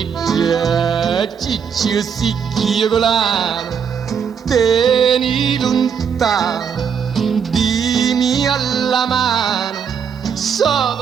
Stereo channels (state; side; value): quieter; left; 7.2 dB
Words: Ciccio sicchio volare, tieni lontano, dimmi alla mano,